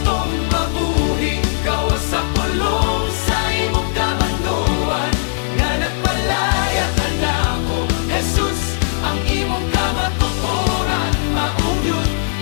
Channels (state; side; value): silent; right; 67 dB below the other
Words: mabuhi gawas sa pulong sa imong kabanduan nga nagpalaya ka nako. Jesus, ang imong kamatuoran. Maugyod,